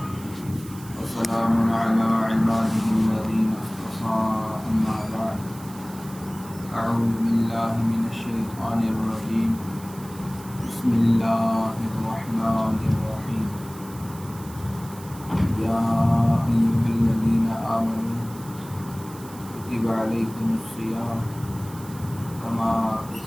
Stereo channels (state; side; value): noise; right; hiss, 19 dB below the sound